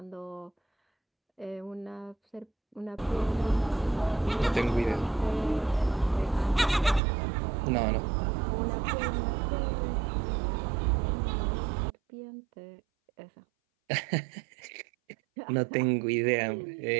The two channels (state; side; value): drops out; left; at 7.0 s